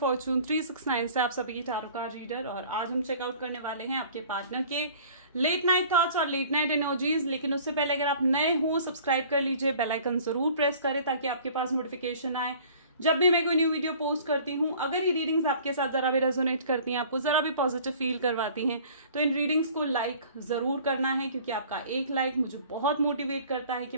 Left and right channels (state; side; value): inverted; both; correlation -0.49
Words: fortune 369 से आप सभी की टैरो कार्ड रीडर। और आज हम चेकआउट करने वाले हैं आपके पार्टनर के लेट नाइट थॉट्स और लेट नाइट एनर्जीज। लेकिन उससे पहले अगर आप नए हो सब्सक्राइब कर लीजिए, बेल आइकन जरूर प्रेस करें ताकि आपके पास नोटिफिकेशन आए जब भी मैं कोई न्यू वीडियो पोस्ट करती हूँ। अगर ये रीडिंग्स आपके साथ जरा भी रेजोनेट करती हैं, आपको जरा भी पॉजिटिव फील करवाती हैं, तो इन रीडिंग्स को लाइक जरूर करना है, क्योंकि आपका एक लाइक मुझे बहुत मोटिवेट करता है कि